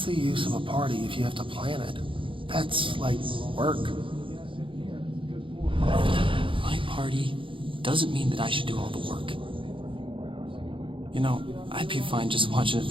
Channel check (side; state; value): left; late; 0.25 ms